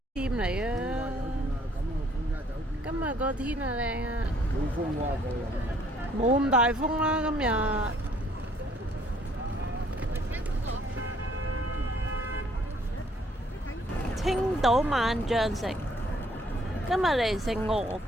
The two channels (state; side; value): normal; both; correlation 0.63